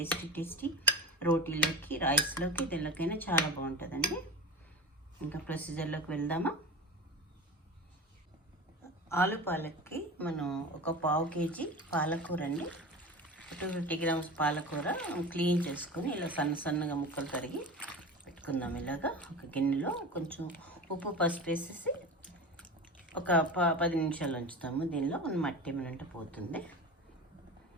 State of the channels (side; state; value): both; normal; correlation 0.30